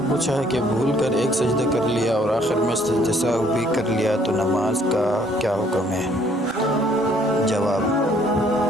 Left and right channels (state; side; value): normal; both; correlation 0.63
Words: پوچھا ہے کہ بھول کر ایک سجدہ کر لیا اور آخر میں سجدہ سہو بھی کر لیا تو نماز کا کیا حکم ہے؟ جواب: